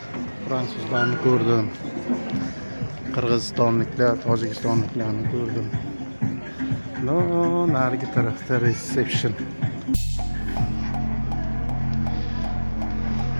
Fransuzlarni ko'rdim. Qirg'izistonliklar, Tojikistonliklarni ko'rdim. No, narigi tarafda reception.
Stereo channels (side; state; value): both; inverted; correlation -1.00